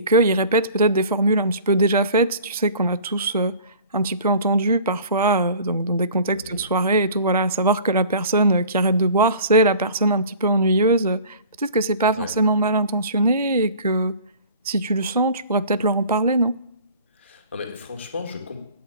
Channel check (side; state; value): both; inverted; correlation -0.45